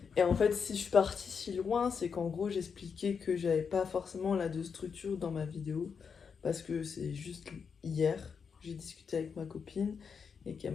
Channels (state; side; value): quieter; right; 6.1 dB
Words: Et en fait, si je suis partie si loin, c'est qu'en gros, j'expliquais que j'avais pas forcément là de structure dans ma vidéo. Parce que c'est juste hier, j'ai discuté avec ma copine et qu'elle